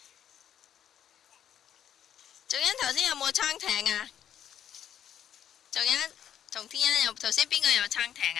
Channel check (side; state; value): right; quieter; 9.9 dB